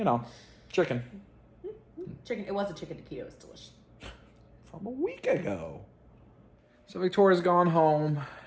chicken. Chicken. It was a chicken taquito. It was delicious. From a week ago. So Victoria's gone home,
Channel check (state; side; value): identical; both; correlation 1.00